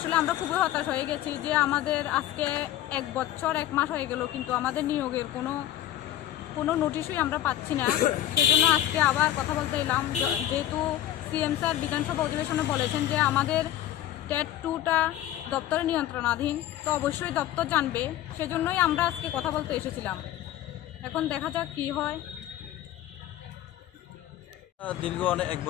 আমরা খুবই হতাশ হয়ে গেছি যে আমাদের আজকে 1 বছর 1 মাস হয়ে গেল, কিন্তু আমাদের নিয়োগের কোনো নোটিশই আমরা পাচ্ছি না। সেই জন্য আজকে আবার কথা বলতে এলাম, যেহেতু সিএম স্যার বিধানসভা অধিবেশনে বলেছেন যে আমাদের টেট 2টা দপ্তরের নিয়ন্ত্রণাধীন, তো অবশ্যই দপ্তর জানবে। সেজন্যই আমরা আজকে কথা বলতে এসেছিলাম। এখন দেখা যাক কি হয়। দীর্ঘ 1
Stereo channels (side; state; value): right; quieter; 12.8 dB